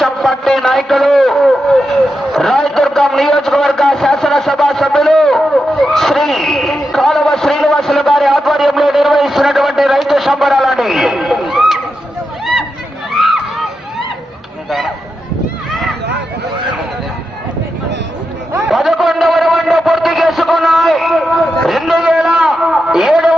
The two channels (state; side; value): normal; both; correlation 0.88